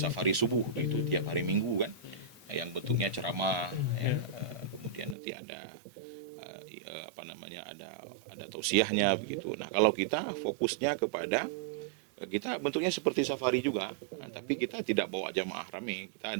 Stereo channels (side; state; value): left; drops out; at 5.2 s